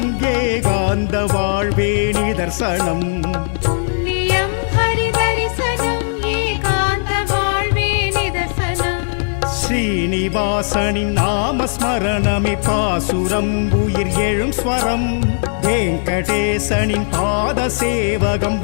ஏகாந்த வாழ்வே நிதர்சனம் புண்ணியம் ஹரிதரிசனம் ஏகாந்த வாழ்வே நிதர்சனம் ஸ்ரீனிவாசனின் நாமஸ்மரணமே பாசுரம் உயிர் எழும் ஸ்வரம் வெங்கடேசனின் பாத சேவகம்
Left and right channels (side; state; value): right; silent; digital silence